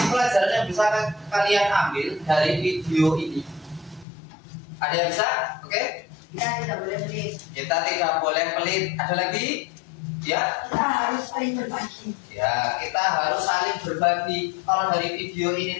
pelajaran yang bisa kalian ambil dari video ini? Ada yang bisa? Oke? Kita tidak boleh pelit. Kita tidak boleh pelit. Ada lagi? Ya? Kita harus saling berbagi. Ya, kita harus saling berbagi. Kalau dari video ini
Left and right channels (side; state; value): right; drops out; at 4.0 s